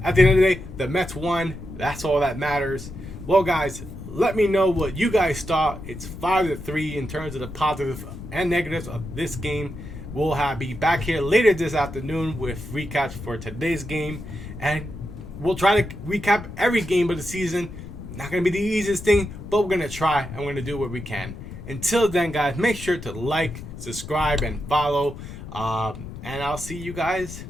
at the end of the day, the Mets won. That's all that matters. Well, guys, let me know what you guys thought. It's 5-3 in terms of the positives and negatives of this game. We'll be back here later this afternoon with recaps for today's game. And we'll try to recap every game of the season. Not going to be the easiest thing, but we're going to try and we're going to do what we can. Until then, guys, make sure to like, subscribe, and follow. And I'll see you guys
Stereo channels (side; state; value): left; noise; rumble, 12 dB below the sound